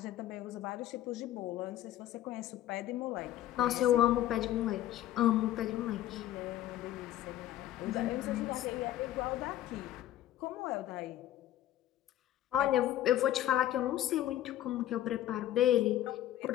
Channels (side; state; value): right; quieter; 13.0 dB